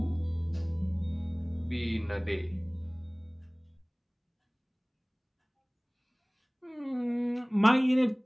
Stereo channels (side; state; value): both; identical; correlation 1.00